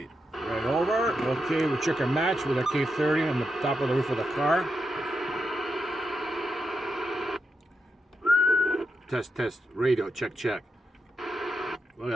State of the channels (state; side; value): normal; both; correlation 0.86